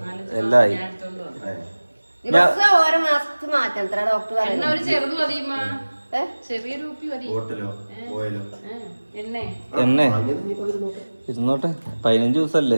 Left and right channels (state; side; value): inverted; both; correlation -1.00